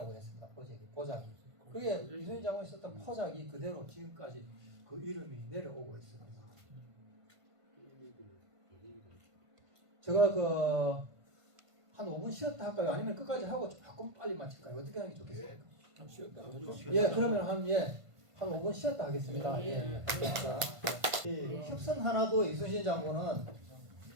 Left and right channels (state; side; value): late; left; 1.5 ms